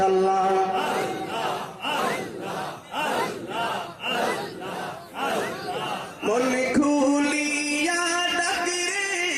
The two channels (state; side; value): identical; both; correlation 1.00